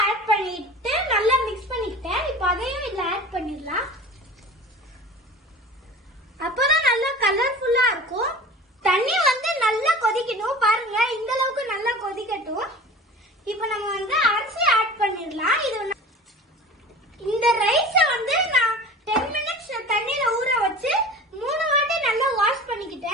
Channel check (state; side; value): normal; both; correlation 0.38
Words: ஆட் பண்ணிட்டு நல்லா மிக்ஸ் பண்ணிக்கிட்டேன். இப்போ அதையும் இதுல ஆட் பண்ணிடலாம். அப்பதான் நல்லா கலர்ஃபுல்லா இருக்கும். தண்ணி வந்து நல்லா கொதிக்கணும் பாருங்க. இந்த அளவுக்கு நல்லா கொதிக்கட்டும். இப்போ நம்ம வந்து அரிசி ஆட் பண்ணிடலாம். இது இந்த ரைஸ வந்து நான் 10 மினிட்ஸ் தண்ணியில ஊற வச்சு 3 வாட்டி நல்லா வாஷ்